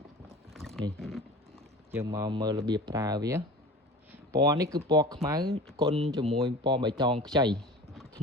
នេះយើងមកមើលរបៀបប្រើវាពណ៌នេះគឺពណ៌ខ្មៅគុណជាមួយពណ៌បៃតងខ្ចីធ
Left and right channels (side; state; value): both; normal; correlation 0.37